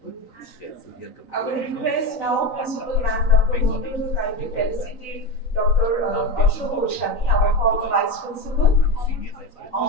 Yes, so we are I will request now Principal Ma'am Dr. Mondal to kindly felicitate Dr. Ashok Goswami, our former Vice Principal. senior vice president.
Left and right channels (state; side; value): late; right; 3.9 ms